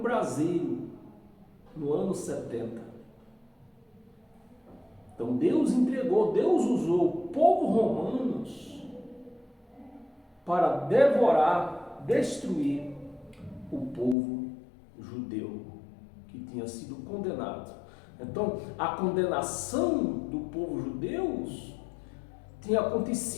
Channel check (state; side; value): drops out; right; at 14.2 s